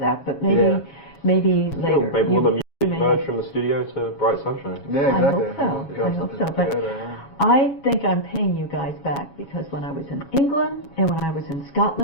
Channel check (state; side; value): late; right; 7.2 ms